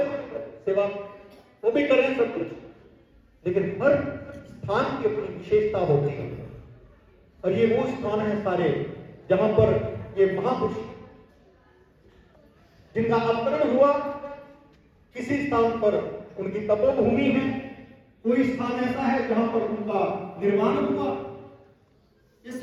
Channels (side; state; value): both; identical; correlation 1.00